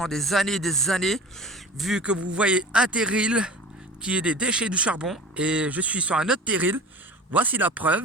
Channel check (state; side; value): normal; both; correlation 0.37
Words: des années. Vu que vous voyez un terril qui est des déchets du charbon. Et je suis sur un autre terril. Voici la